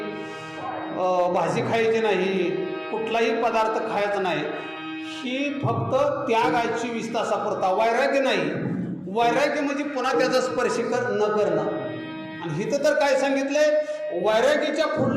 भाजी खायची नाही, कुठलाही पदार्थ खायचा नाही, ही फक्त त्याग आहे 24 तासापुरता. वैराग्य नाही. वैराग्य म्हणजे पुन्हा त्याचा स्पर्श न करणं. आणि इथं तर काय सांगितलंय, वैराग्याच्या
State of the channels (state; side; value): identical; both; correlation 1.00